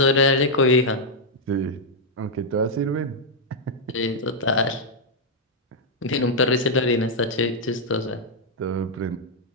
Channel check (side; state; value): both; normal; correlation -0.03